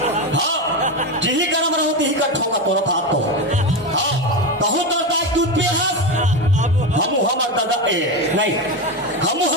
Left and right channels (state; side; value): normal; both; correlation 0.15